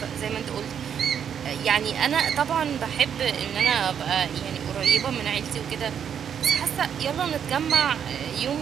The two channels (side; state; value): left; quieter; 8.2 dB